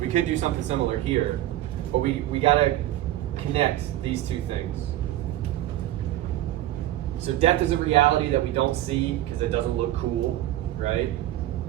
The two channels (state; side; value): quieter; left; 14.4 dB